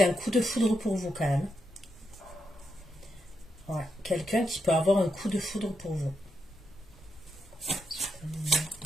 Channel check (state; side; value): normal; both; correlation 0.83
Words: a un coup de foudre pour vous quand même. Ouais, quelqu'un qui peut avoir un coup de foudre pour vous.